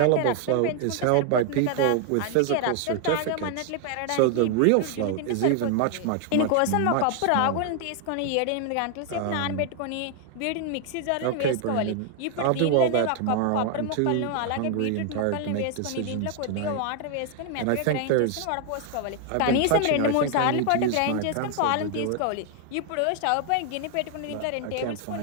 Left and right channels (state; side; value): different; both; correlation 0.00